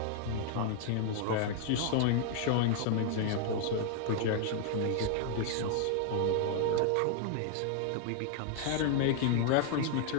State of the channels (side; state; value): both; different; correlation 0.00